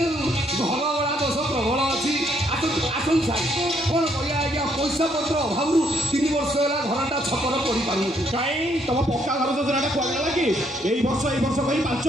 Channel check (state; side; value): normal; both; correlation 0.70